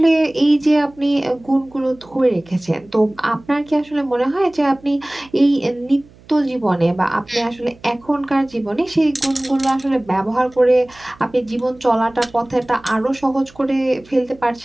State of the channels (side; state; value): right; noise; hum, 26 dB below the sound